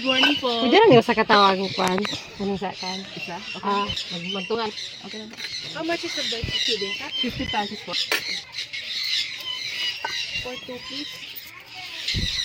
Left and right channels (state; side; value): identical; both; correlation 1.00